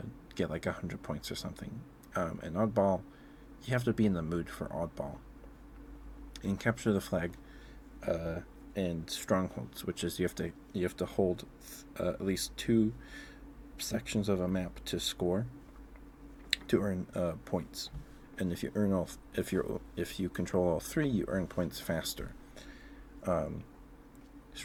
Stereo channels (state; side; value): identical; both; correlation 1.00